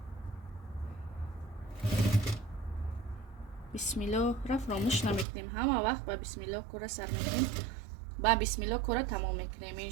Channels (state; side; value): drops out; left; at 5.2 s